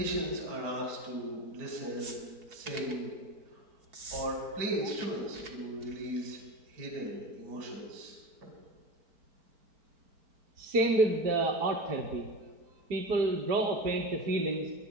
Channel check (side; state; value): left; late; 4.5 ms